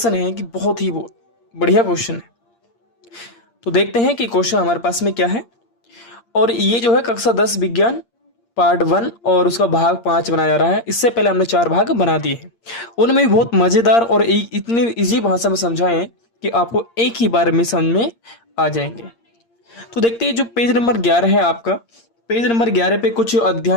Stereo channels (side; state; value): right; late; 8.6 ms